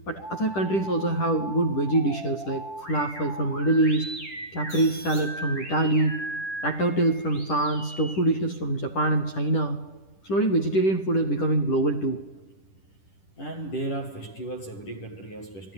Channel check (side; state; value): right; late; 10 ms